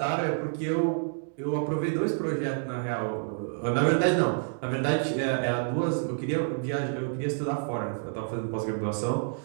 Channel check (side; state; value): left; silent; digital silence